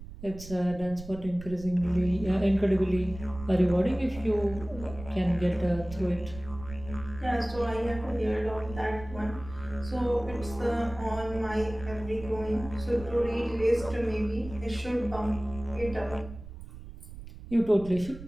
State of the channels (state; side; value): noise; right; rumble, 14 dB below the sound